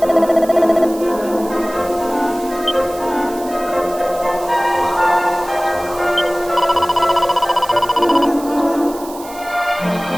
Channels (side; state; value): right; noise; hiss, 17 dB below the sound